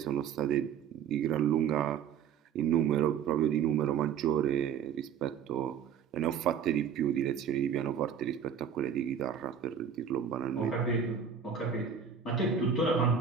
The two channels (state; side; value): quieter; left; 7.7 dB